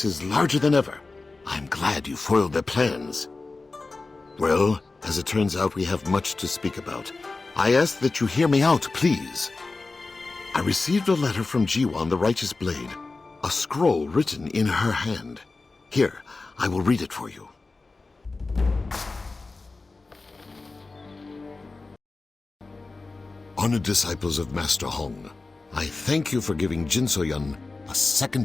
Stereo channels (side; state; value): right; quieter; 3.7 dB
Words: is larger than ever. I'm glad you foiled their plans. Well, as it turns out, we have much to speak about. I ask that you hear me out, please. I received a letter from Jiwan, the Righteous Blade. A scroll written in her hand. Here, I will read it for you. Honored disciples of Master Hong, I thank you for giving Jin So-yun a second